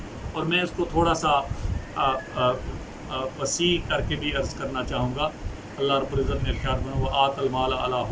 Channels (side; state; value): both; identical; correlation 1.00